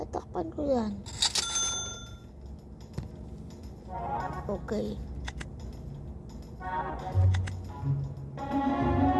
ko yan. Okay.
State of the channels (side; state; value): both; identical; correlation 1.00